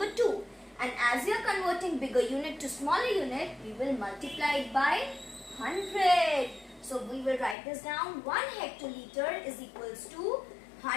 2. And as we are converting bigger unit to smaller unit, we will multiply it by 100. So we will write this down. 1 hectoliter is equals to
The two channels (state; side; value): drops out; right; at 7.6 s